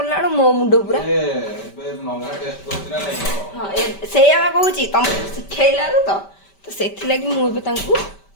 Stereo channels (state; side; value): late; right; 5.1 ms